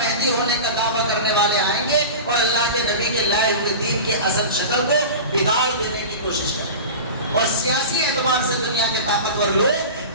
ہونے کا دعویٰ کرنے والے آئیں گے اور اللہ کے نبی کے لائے ہوئے دین کی اصل شکل کو بگاڑ دینے کی کوشش کریں گے، اور سیاسی اعتبار سے دنیا کے طاقتور لوگ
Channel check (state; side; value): inverted; both; correlation -0.31